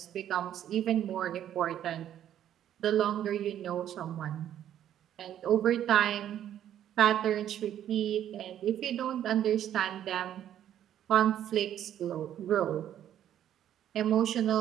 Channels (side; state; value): left; quieter; 10.8 dB